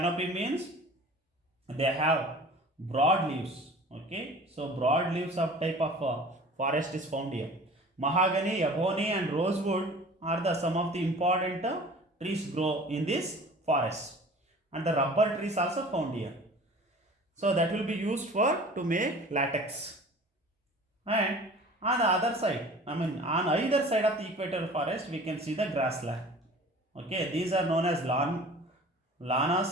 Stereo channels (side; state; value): both; normal; correlation 0.44